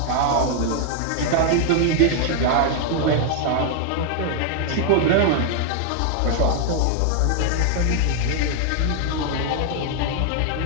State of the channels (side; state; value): both; different; correlation 0.00